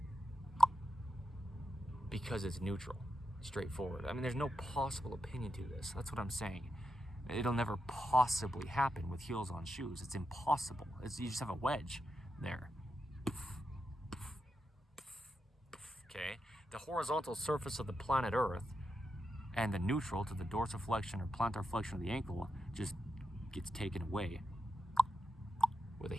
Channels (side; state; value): both; normal; correlation 0.86